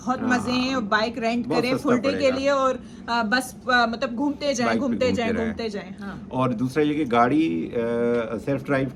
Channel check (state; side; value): identical; both; correlation 1.00